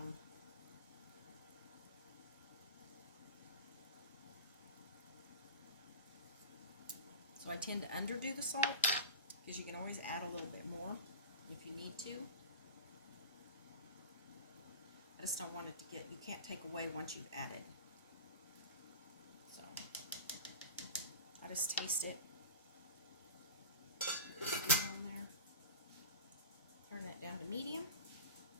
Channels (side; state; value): both; inverted; correlation -0.33